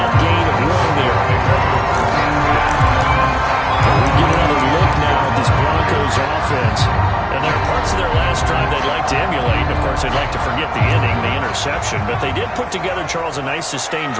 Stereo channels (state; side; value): identical; both; correlation 1.00